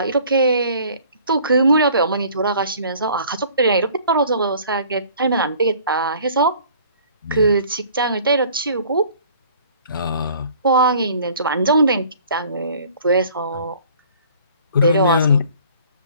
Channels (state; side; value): inverted; both; correlation -0.52